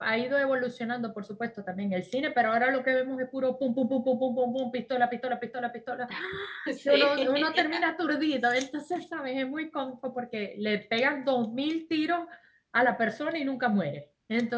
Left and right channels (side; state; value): both; identical; correlation 1.00